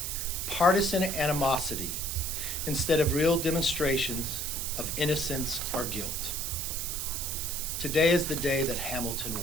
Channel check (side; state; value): right; noise; hiss, 3 dB below the sound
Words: partisan animosity instead of real demonstrations of innocence or guilt." Today is the day that Hamilton